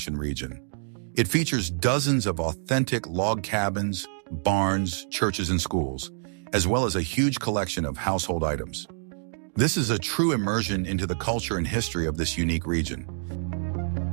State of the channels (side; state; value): left; silent; digital silence